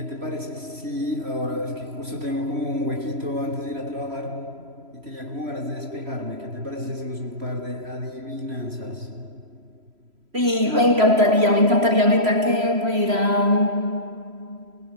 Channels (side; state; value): left; late; 3.0 ms